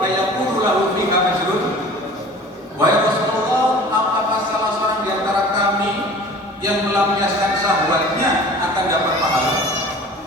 fa yaqulu lahu fiha ajrun?" Wahai Rasulullah, apakah salah seorang di antara kami yang melampiaskan syahwatnya akan dapat pahala?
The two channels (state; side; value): normal; both; correlation 0.43